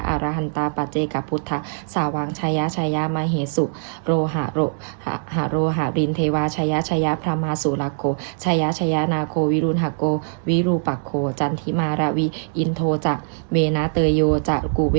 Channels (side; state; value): left; silent; 64 dB below the other